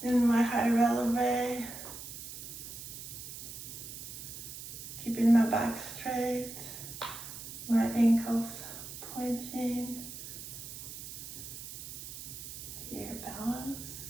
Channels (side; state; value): right; noise; hiss, 10 dB below the sound